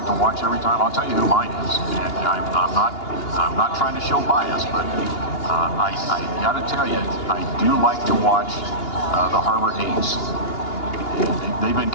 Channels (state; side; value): late; right; 2.8 ms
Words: to watch every time? I'll tell you who mine is. And I'm not trying to show bias, but I got to tell you, I do like to watch the Harbor A's. They've been